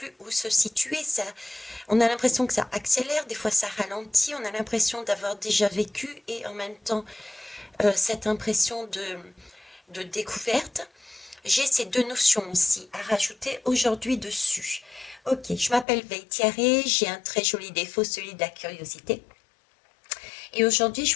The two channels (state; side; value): drops out; right; at 15.9 s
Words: où se situer. Ça, on a l'impression que ça accélère, des fois ça ralentit. On a l'impression d'avoir déjà vécu et en même temps cette impression de découverte. J'ai ces deux notions aussi à rajouter aujourd'hui dessus. Ok, je m'appelle Veille Thierry, j'ai un très joli défaut, celui de la curiosité. Et aujourd'hui, je